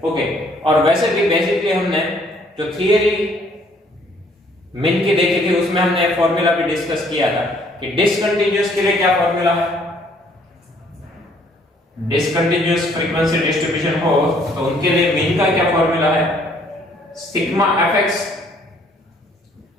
ओके, और वैसे भी बेसिकली हमने जो थियरी मिन की देखी थी उसमें हमने फॉर्मूला भी डिस्कस किया था कि डिसकंटिन्यूअस के लिए क्या फॉर्मूला है. डिसकंटिन्यूअस फ्रीक्वेंसी डिस्ट्रीब्यूशन हो तो उनके लिए मीन का क्या फॉर्मूला है, sigma fx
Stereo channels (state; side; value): normal; both; correlation 0.63